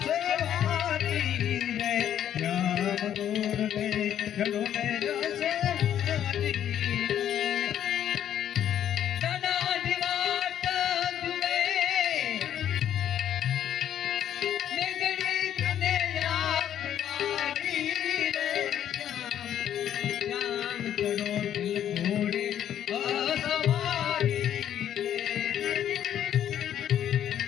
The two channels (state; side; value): quieter; right; 10.3 dB